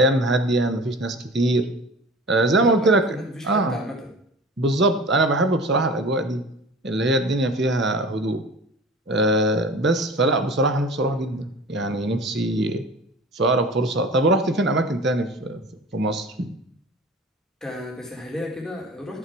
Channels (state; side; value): normal; both; correlation 0.39